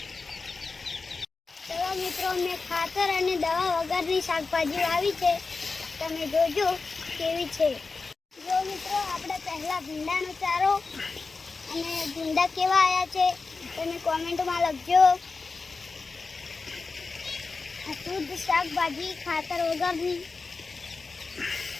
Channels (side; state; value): right; quieter; 4.2 dB